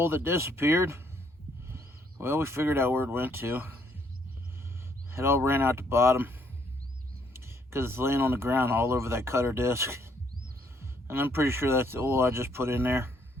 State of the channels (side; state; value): both; normal; correlation 0.69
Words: that disappeared? Well, we figured out where it went to. It all ran out the bottom because it's laying on the ground all over that cutter disc. And I'm pretty sure that's the oil I just put in there.